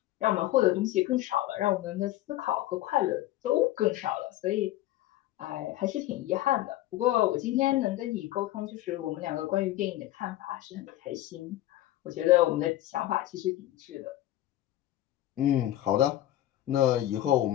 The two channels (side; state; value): right; quieter; 14.8 dB